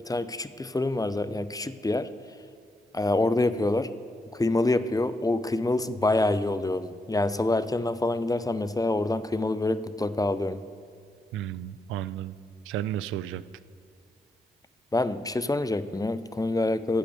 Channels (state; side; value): normal; both; correlation 0.81